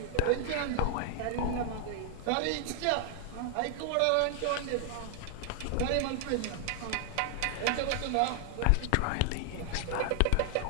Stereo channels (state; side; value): different; both; correlation 0.00